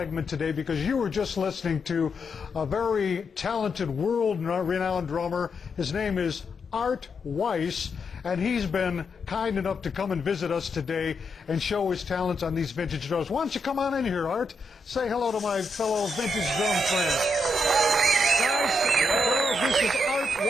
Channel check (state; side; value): normal; both; correlation 0.82